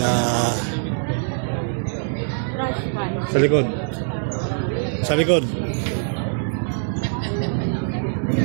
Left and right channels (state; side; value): silent; left; digital silence